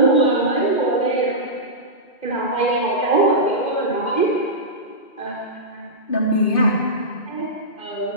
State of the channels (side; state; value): right; late; 2.5 ms